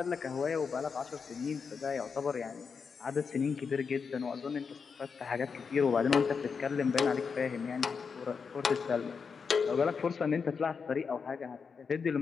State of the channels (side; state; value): right; quieter; 5.7 dB